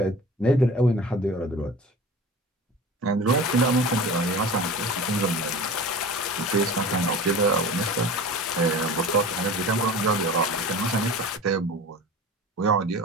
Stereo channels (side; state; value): both; normal; correlation 0.37